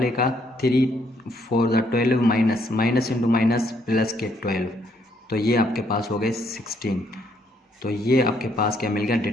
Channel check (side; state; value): both; normal; correlation 0.71